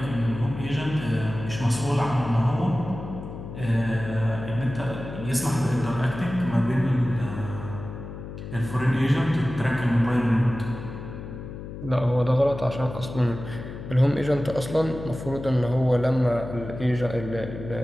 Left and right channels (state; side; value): noise; left; hum, 10 dB below the sound